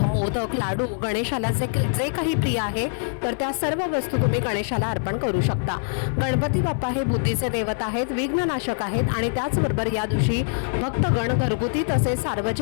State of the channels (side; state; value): right; silent; 57 dB below the other